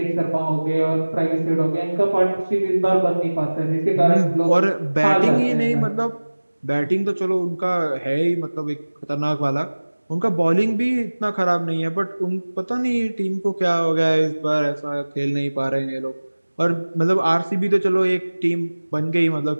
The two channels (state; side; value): inverted; both; correlation -1.00